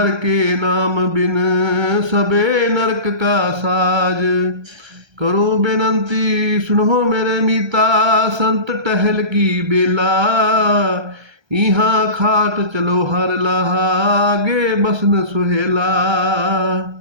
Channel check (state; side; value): late; left; 1.3 ms